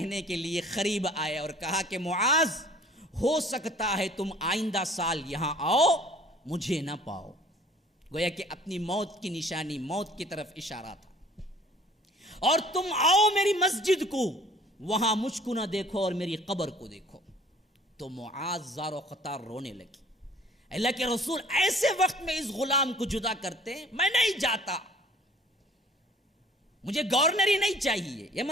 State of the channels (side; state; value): both; normal; correlation 0.52